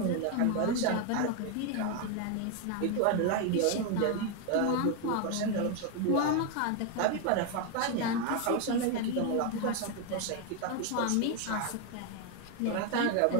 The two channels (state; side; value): different; both; correlation 0.01